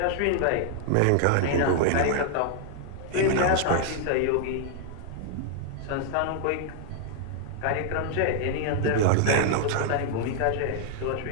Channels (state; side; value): different; both; correlation 0.00